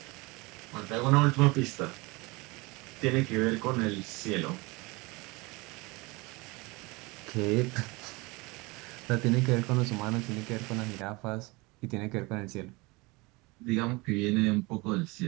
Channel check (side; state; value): left; quieter; 25.0 dB